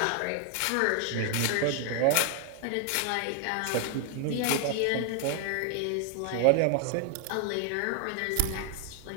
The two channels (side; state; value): both; different; correlation 0.00